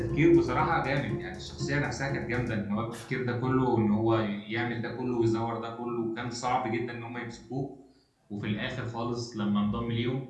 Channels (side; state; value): both; identical; correlation 1.00